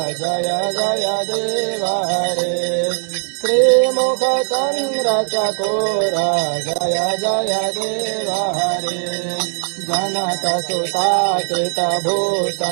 जय जय देव हरे श्रीमुख चंद्र चकोर जय जय देव हरे जनक सुताकृत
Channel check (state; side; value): silent; left; digital silence